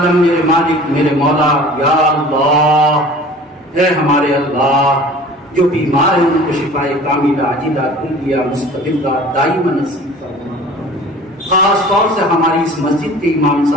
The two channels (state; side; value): normal; both; correlation 0.44